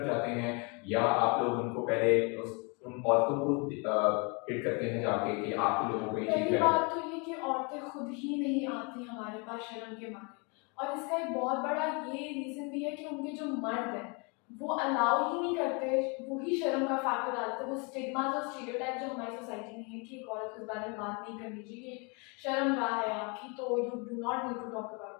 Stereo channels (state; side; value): quieter; right; 32.5 dB